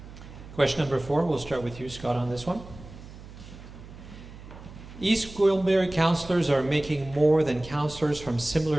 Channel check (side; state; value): right; noise; hum, 16 dB below the sound